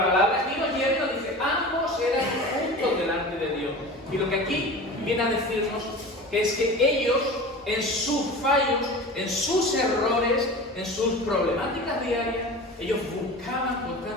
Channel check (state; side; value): normal; both; correlation 0.34